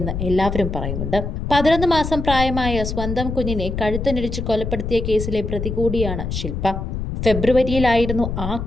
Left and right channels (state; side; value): noise; left; rumble, 4 dB below the sound